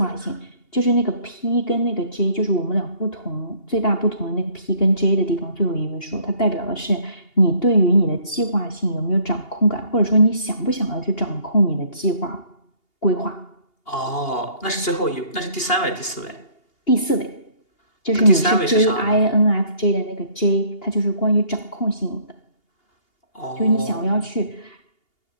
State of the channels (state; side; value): late; right; 2.8 ms